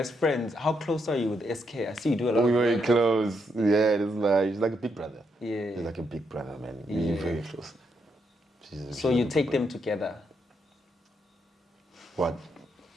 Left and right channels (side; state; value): both; normal; correlation 0.79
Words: friends, how close are you with SK? I see you do a lot. We're of very work. close. Yeah, he's like a big brother. Yeah. He's like a big brother, man. Yeah. We're very close. So you take them together. What?